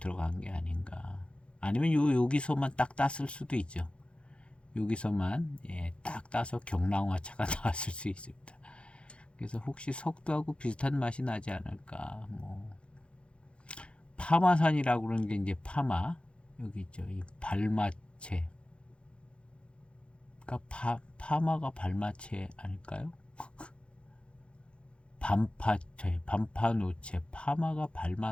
게 아닌가. 아니면 여기서만 딱 땄을 수도 있죠. 여기서만 딱 따서 경랑화차가 나왔을 수 있습니다. 그래서 혹시 석두하고 비슷한 맛이 나지 않을까. 파마산이라고 그러는 게 이제 파마 여기 있죠. 이 발마체. 그러니까 파마가 발마체 아닐까요? 반파노체, 파마가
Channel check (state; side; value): late; right; 0.058 ms